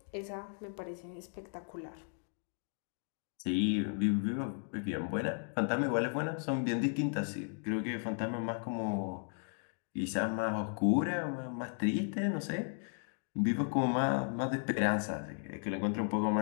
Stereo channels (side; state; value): right; silent; 54 dB below the other